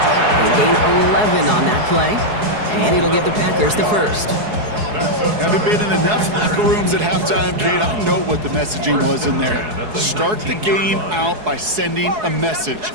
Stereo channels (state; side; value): late; left; 4.7 ms